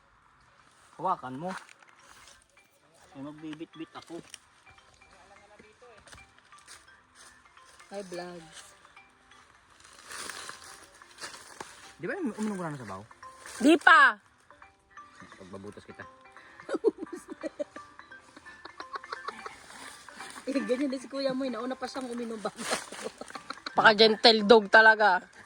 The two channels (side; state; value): both; identical; correlation 1.00